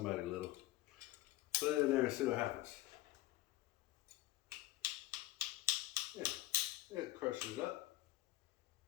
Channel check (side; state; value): right; quieter; 17.0 dB